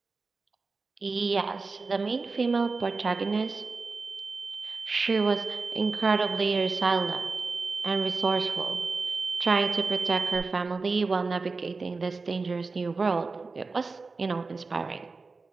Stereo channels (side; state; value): left; quieter; 4.1 dB